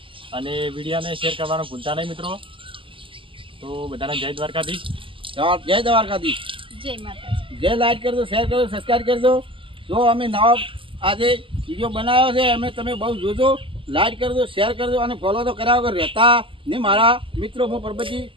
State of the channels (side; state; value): left; late; 0.25 ms